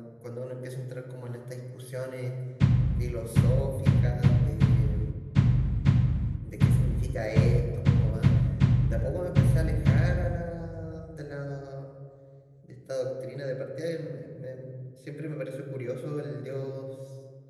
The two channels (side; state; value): both; identical; correlation 1.00